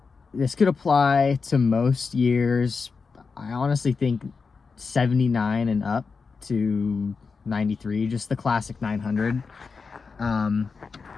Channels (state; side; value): quieter; right; 4.9 dB